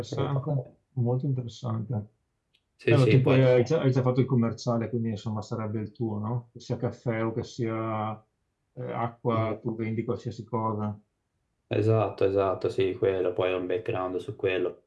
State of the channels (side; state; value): both; identical; correlation 1.00